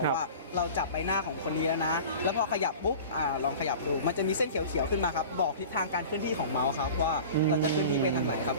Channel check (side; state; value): both; inverted; correlation -0.38